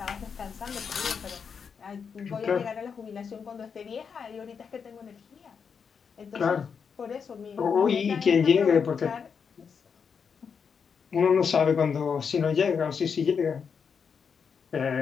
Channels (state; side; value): quieter; right; 6.3 dB